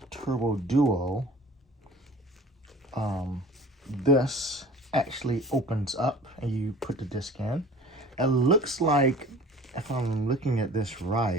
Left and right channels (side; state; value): both; normal; correlation 0.45